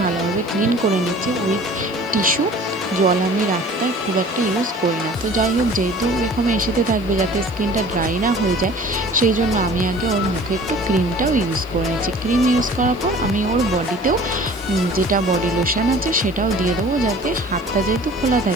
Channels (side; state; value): right; noise; hiss, 29 dB below the sound